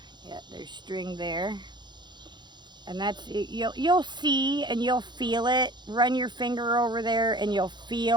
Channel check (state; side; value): late; left; 0.21 ms